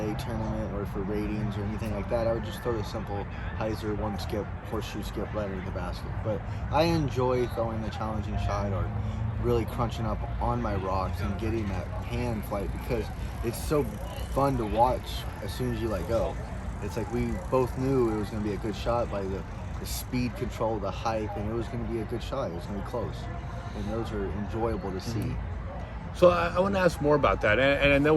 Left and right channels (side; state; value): both; identical; correlation 1.00